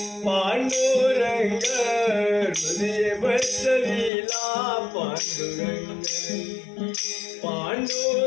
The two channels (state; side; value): drops out; right; at 4.1 s